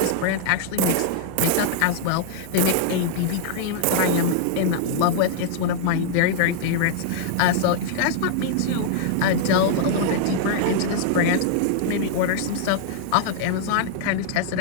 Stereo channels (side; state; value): both; different; correlation -0.01